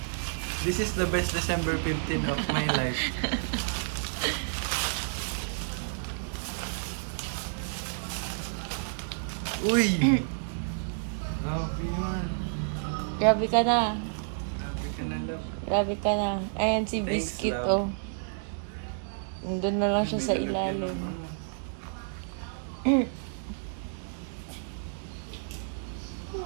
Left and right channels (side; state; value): left; silent; digital silence